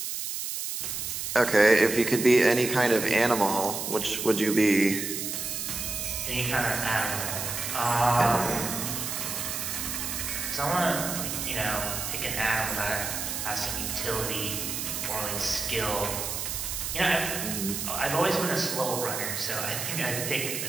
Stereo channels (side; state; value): right; noise; hiss, 4 dB below the sound